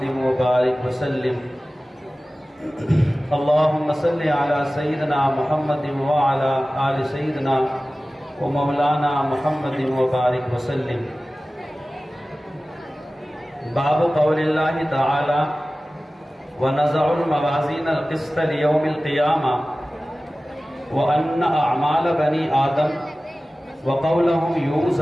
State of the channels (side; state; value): both; normal; correlation 0.96